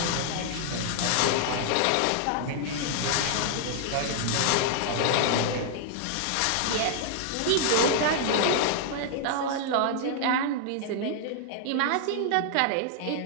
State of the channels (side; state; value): both; different; correlation -0.01